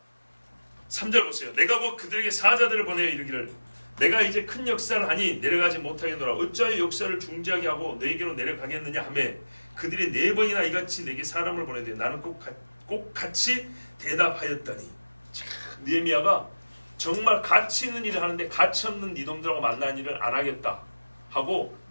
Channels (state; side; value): inverted; both; correlation -1.00